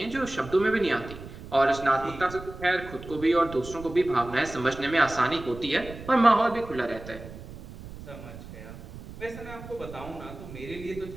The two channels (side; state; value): right; noise; rumble, 14 dB below the sound